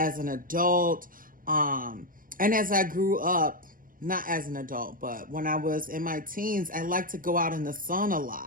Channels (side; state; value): left; late; 0.40 ms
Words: an adult, and as I grew up. Not as an adult, but when I was in my teens, I liked to go out in the sun a